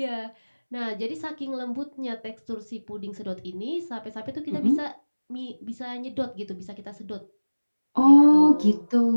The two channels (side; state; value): both; inverted; correlation -1.00